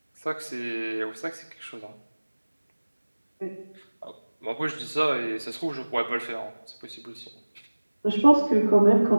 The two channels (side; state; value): both; inverted; correlation -1.00